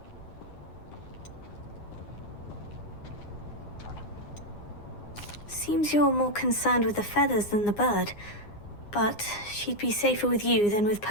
Seems you're more concerned with the feathers than the bird. But she'd be safer with you than with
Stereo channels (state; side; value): late; right; 9.7 ms